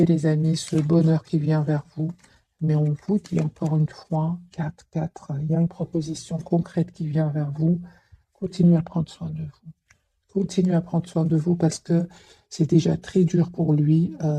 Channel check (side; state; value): both; identical; correlation 1.00